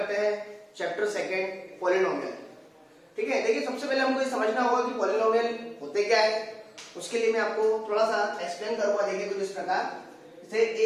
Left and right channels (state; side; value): identical; both; correlation 1.00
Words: हैं चैप्टर 2 पॉलिनोमियल। ठीक है, देखिए सबसे पहले हमको ये समझना होगा कि पॉलिनोमियल होते क्या है। उसके लिए मैं आपको थोड़ा सा एक्सप्लेन करूंगा। देखिए कुछ इस प्रकार, जैसे